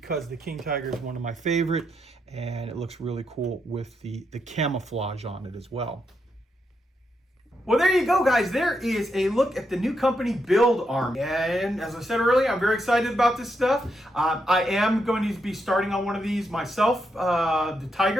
the King Tiger is one of my favorite, and it looks really cool with the camouflage on it as well. Well, there you go, guys. There is a look at the new company, Build Army. And as I said earlier, I'm very excited about this stuff. I am going to be starting on one of these myself, the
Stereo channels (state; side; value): normal; both; correlation 0.81